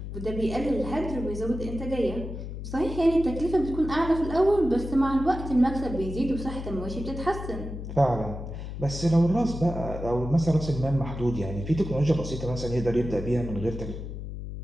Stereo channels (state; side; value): noise; left; hum, 8 dB below the sound